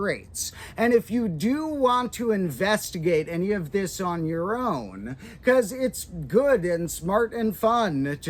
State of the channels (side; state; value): both; identical; correlation 1.00